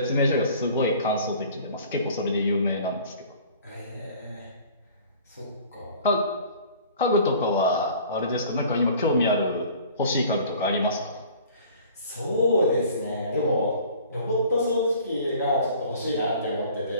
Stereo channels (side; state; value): both; inverted; correlation -0.48